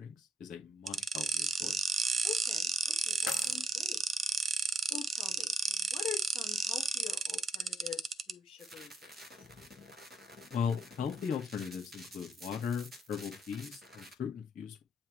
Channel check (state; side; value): normal; both; correlation 0.75